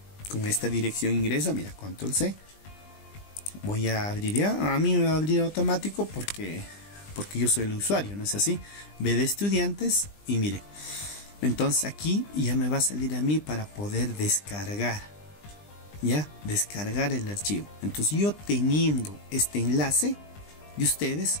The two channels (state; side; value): late; right; 20 ms